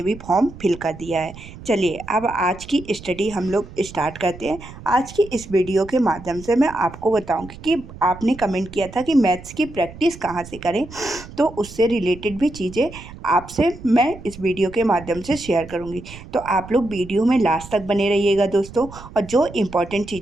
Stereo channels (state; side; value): noise; right; rumble, 16 dB below the sound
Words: भी फॉर्म फिल कर दिया है। चलिए अब आज की स्टडी हम लोग स्टार्ट करते हैं। आज की इस वीडियो के माध्यम से मैं आपको बताऊंगी कि आपने कमेंट किया था कि मैथ्स की प्रैक्टिस कहाँ से करें, तो उससे रिलेटेड भी चीज़ें आपसे मैं इस वीडियो के माध्यम से शेयर करूंगी। तो आप लोग वीडियो में लास्ट तक बने रहिएगा दोस्तों, और जो इम्पोर्टेंट